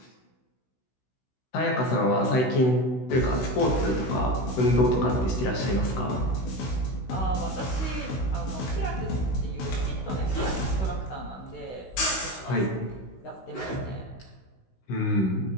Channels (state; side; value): late; right; 16 ms